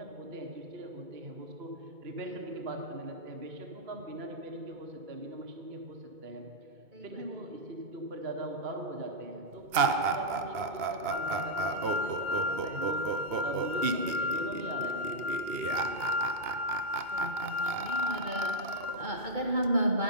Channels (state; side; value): late; left; 2.2 ms